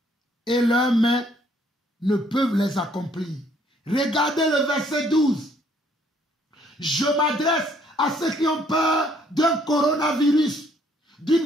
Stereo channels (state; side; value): normal; both; correlation 0.65